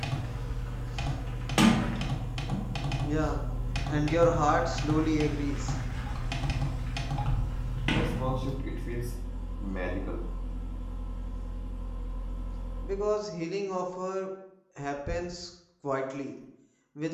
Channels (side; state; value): both; identical; correlation 1.00